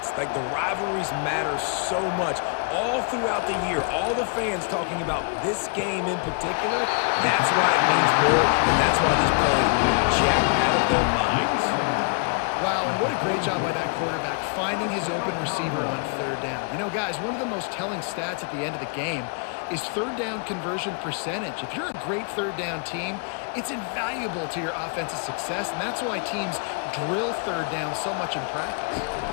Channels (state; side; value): quieter; right; 39.5 dB